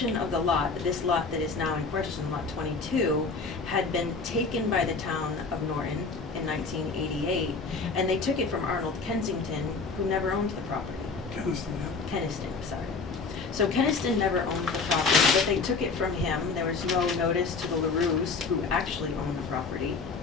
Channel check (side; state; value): right; quieter; 4.4 dB